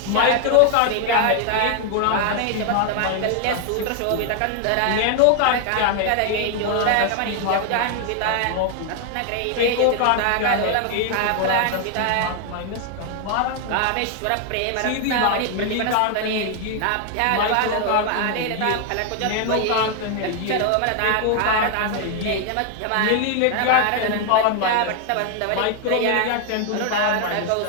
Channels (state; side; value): different; both; correlation 0.00